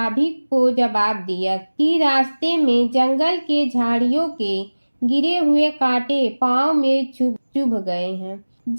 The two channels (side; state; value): both; inverted; correlation -1.00